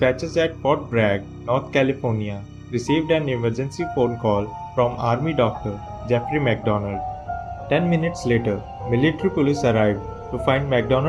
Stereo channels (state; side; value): identical; both; correlation 1.00